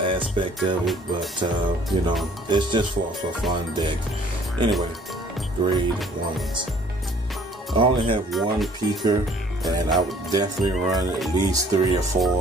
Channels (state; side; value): normal; both; correlation 0.57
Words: of it, but it's just for a fun deck. Anyway, grade 1s. I only have one peaker, and I would definitely run at least 3 or